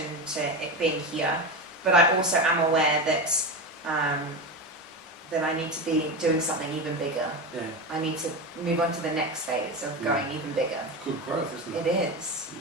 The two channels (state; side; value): normal; both; correlation 0.20